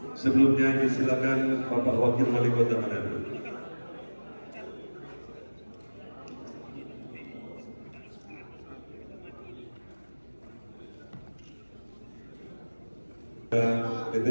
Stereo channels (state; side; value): inverted; both; correlation -1.00